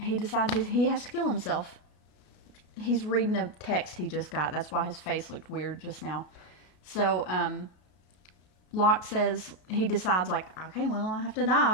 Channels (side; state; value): right; late; 33 ms